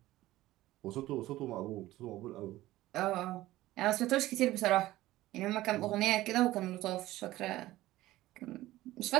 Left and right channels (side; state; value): left; quieter; 16.4 dB